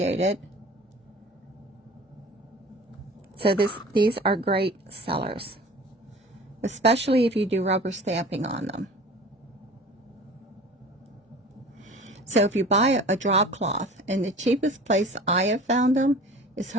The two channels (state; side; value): normal; both; correlation 0.42